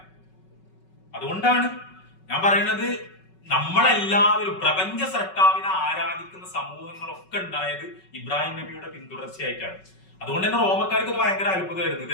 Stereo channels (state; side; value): late; right; 5.3 ms